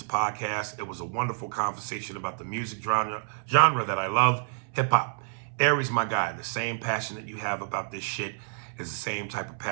podcast. It was a wonderful conversation about the music genre that I love, hip-hop. Aries, my guy, the same passion that you have about this shit is the same type of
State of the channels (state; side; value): silent; left; 59 dB below the other